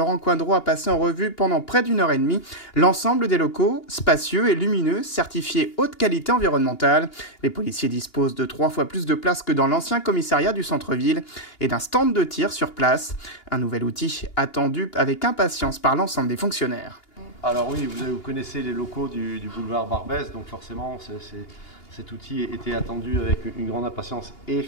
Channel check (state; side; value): late; right; 2.8 ms